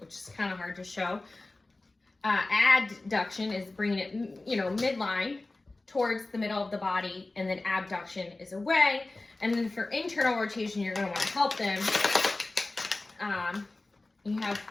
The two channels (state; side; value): quieter; right; 3.1 dB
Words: is kind of hard to show. Adduction is bringing it, you know, midline towards the middle of the body, and then abduction is away. And then for internal rotation, you're going to want to help them. You have